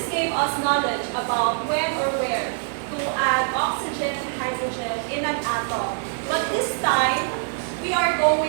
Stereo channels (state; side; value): silent; left; digital silence